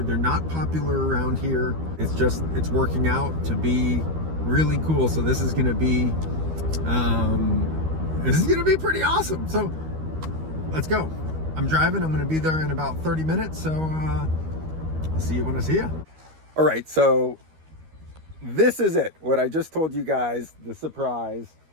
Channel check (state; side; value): late; left; 13 ms